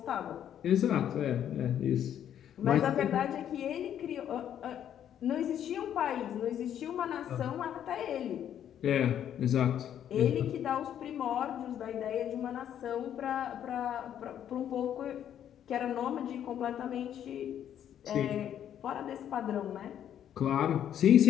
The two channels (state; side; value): quieter; right; 10.0 dB